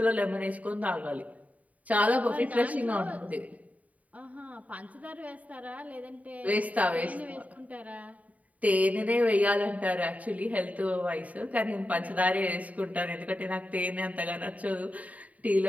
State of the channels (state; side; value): late; left; 0.070 ms